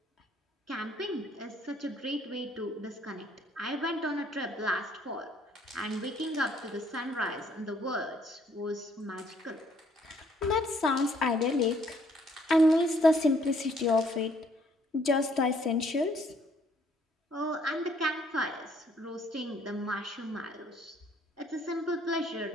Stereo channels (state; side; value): normal; both; correlation 0.64